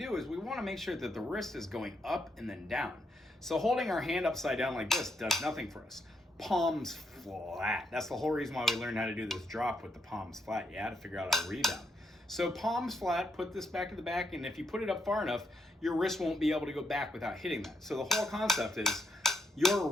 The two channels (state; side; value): normal; both; correlation 0.77